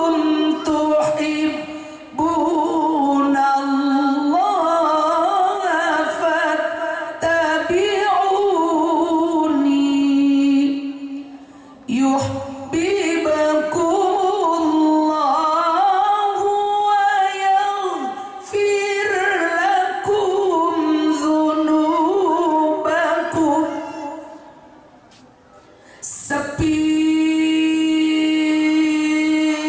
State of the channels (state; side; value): identical; both; correlation 1.00